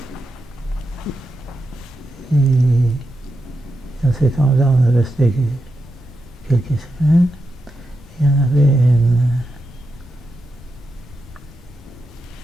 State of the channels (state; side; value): normal; both; correlation 0.87